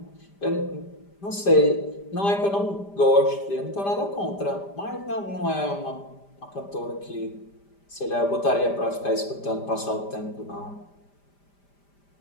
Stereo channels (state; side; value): late; right; 5.0 ms